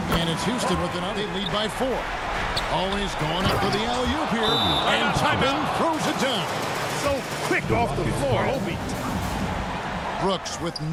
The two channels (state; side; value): identical; both; correlation 1.00